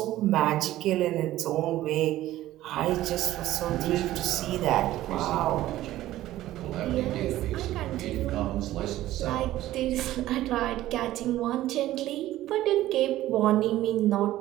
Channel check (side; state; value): left; quieter; 14.8 dB